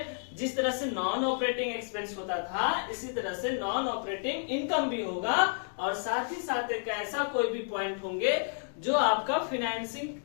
जिस तरह से नॉन ऑपरेटिंग एक्सपेंस होता था, इसी तरह से नॉन ऑपरेटिंग इनकम भी होगा, और साथ ही साथ एक ऐसा कोई भी पॉइंट होंगे जो आपका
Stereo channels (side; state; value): right; silent; digital silence